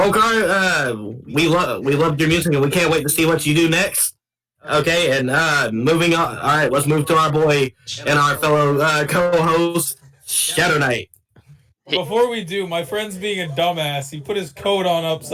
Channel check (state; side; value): identical; both; correlation 1.00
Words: we love your music and we can't wait to see what you do next. Okay, and moving on. All right, let's move to our boy and our fellow co-host, Shadow Knight. Before we do, my friend's being a dumbass. He put his coat on